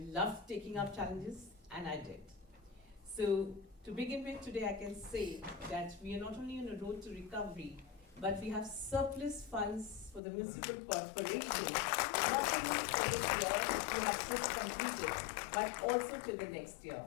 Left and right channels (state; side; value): drops out; right; at 10.2 s